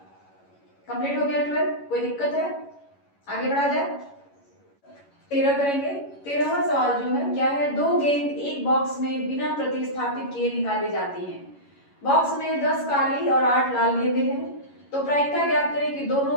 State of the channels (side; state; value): right; late; 11 ms